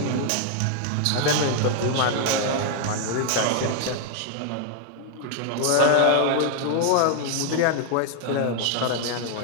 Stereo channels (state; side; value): different; both; correlation 0.00